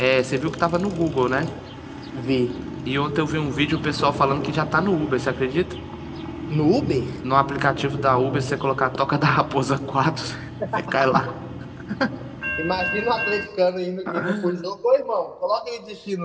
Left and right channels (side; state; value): both; identical; correlation 1.00